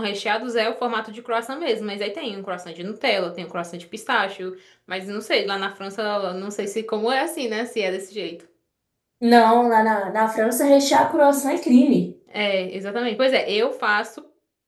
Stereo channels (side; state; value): both; identical; correlation 1.00